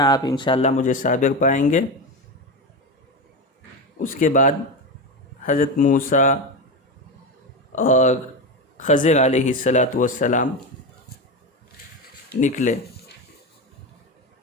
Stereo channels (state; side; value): normal; both; correlation 0.18